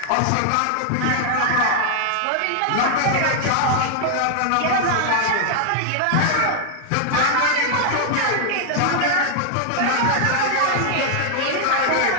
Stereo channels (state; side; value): different; both; correlation 0.00